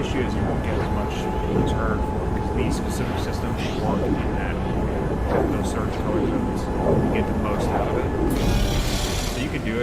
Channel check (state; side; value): identical; both; correlation 1.00